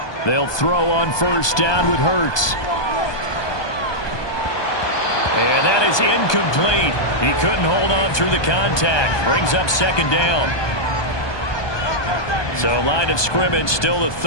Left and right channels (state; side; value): late; right; 1.2 ms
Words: They'll throw on first down with Hurts. And that is incomplete. He couldn't hold on through the contact. Brings up 2nd down. So line of scrimmage still the